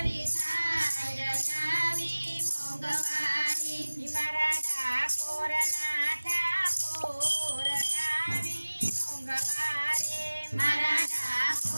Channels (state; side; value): inverted; both; correlation -1.00